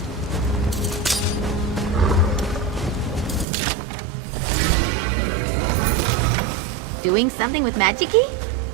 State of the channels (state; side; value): drops out; left; at 3.5 s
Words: Doing something with magic-y?